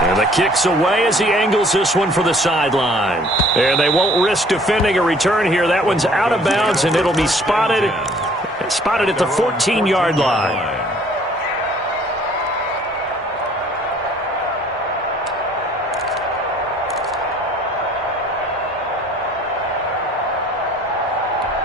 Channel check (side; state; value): both; normal; correlation 0.56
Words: And the kick's away as he angles this one for the sideline. And they won't risk defending a return here. That one's out of bounds, and it'll be spotted at the 14-yard line.